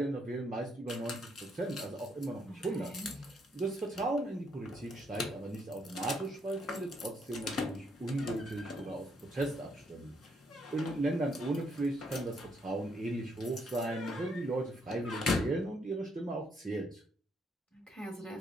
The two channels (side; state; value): both; normal; correlation 0.72